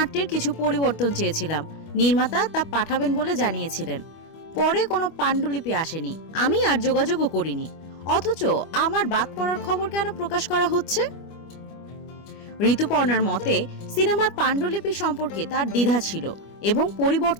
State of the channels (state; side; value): late; right; 25 ms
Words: কিছু পরিবর্তন চেয়েছিলাম, নির্মাতা তা পাঠাবেন বলে জানিয়েছিলেন। পরে কোনো পাণ্ডুলিপি আসেনি, আমি আর যোগাযোগও করিনি। অথচ আমার বাদ পড়ার খবর কেন প্রকাশ করা হচ্ছে? ঋতুপর্ণার মতে, সিনেমার পাণ্ডুলিপি সম্পর্কে তার দ্বিধা ছিল এবং